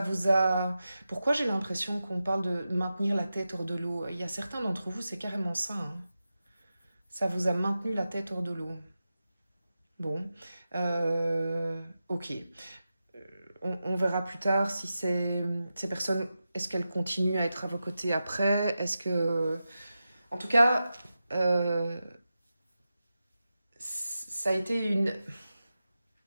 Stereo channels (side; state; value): both; inverted; correlation -0.92